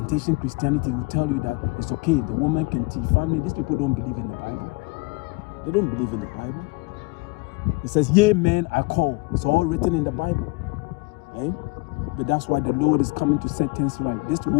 Christianity will tell you that it's okay, the woman can teach. Family, these people don't believe in the Bible. They don't believe in the Bible. It says, yea, men, I call. It's all written in the Bible. Eh? But that's why the Lord is coming to set things right. This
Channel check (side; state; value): right; quieter; 26.7 dB